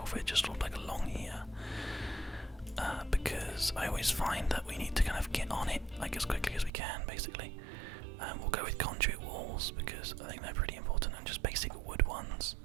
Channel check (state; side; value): drops out; left; at 6.7 s